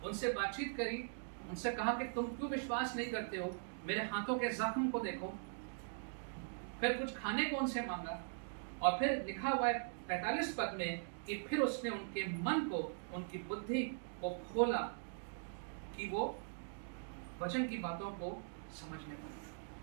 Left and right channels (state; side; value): silent; left; digital silence